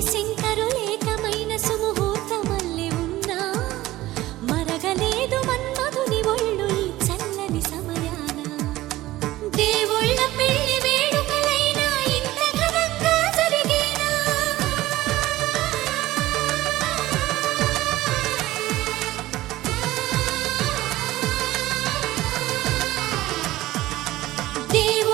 శంకరు ఏకమైన సుముహూర్తమల్లె ఉన్నా మరగలేదు మన్మధుని ఒళ్ళు ఈ చల్లని సమయాన. దేవుళ్ళ పెళ్లి వేడుకలైనా ఇంత ఘనంగా జరిగేనా?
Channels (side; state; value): left; quieter; 16.7 dB